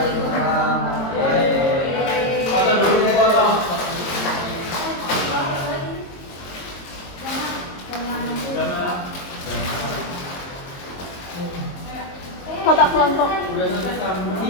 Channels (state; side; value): late; right; 22 ms